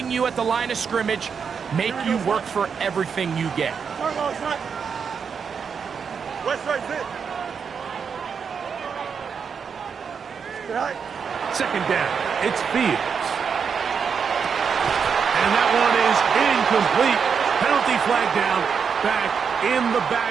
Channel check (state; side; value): quieter; left; 6.4 dB